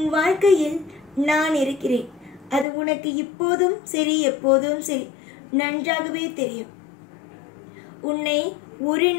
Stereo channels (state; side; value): drops out; right; at 2.7 s